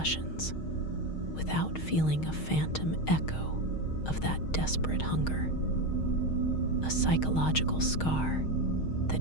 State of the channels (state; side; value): late; right; 6.4 ms